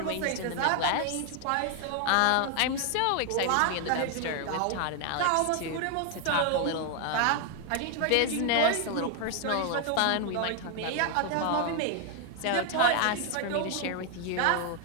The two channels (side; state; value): both; different; correlation 0.00